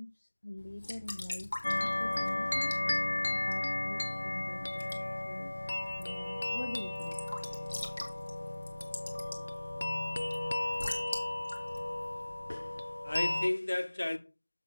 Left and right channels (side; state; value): both; inverted; correlation -1.00